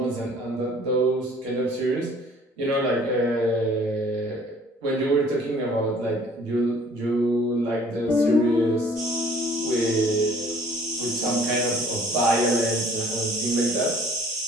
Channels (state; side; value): normal; both; correlation 0.54